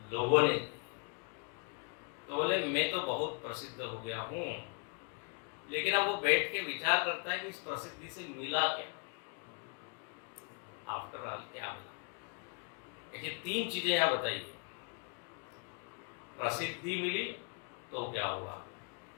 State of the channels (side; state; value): right; quieter; 36.5 dB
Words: लोगों ने। तो बोले मैं तो बहुत प्रसिद्ध हो गया हूँ, लेकिन अब वो बैठ के विचार करता है कि इस प्रसिद्धि से मिला क्या, आफ्टर ऑल क्या मिला। ऐसी तीन चीजें यहाँ बताइए। प्रसिद्धि मिली तो क्या हुआ?